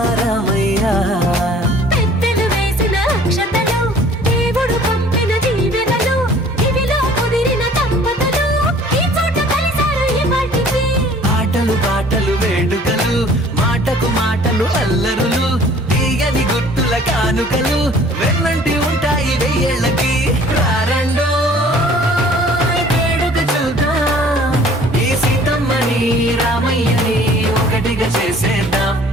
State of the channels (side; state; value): both; normal; correlation 0.52